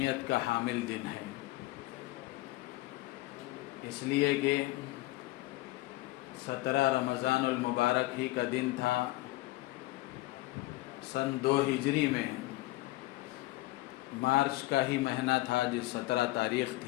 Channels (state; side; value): quieter; right; 19.1 dB